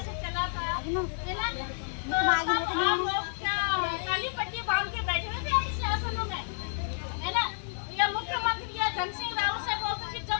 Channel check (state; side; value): silent; right; digital silence